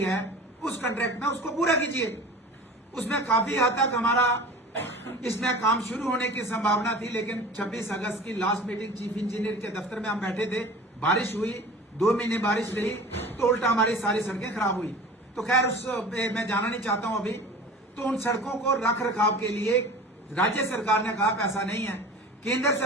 है, उस कॉन्ट्रैक्ट में उसको पूरा कीजिए। उसमें काफी हद तक हमारा इसमें काम शुरू होने की संभावना थी, लेकिन 26 अगस्त की लास्ट मीटिंग चीफ इंजीनियर के दफ्तर में हम बैठे थे, बारिश हुई, 2 महीने बारिश रही तो उल्टा हमारी सारी सड़कें खराब हुई। तो खैर उस मैं जाना नहीं चाहता हूं अभी। तो उन सड़कों को रख रखाव के लिए राज्य सरकार ने कहा पैसा नहीं है। केंद्र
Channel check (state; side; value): normal; both; correlation 0.39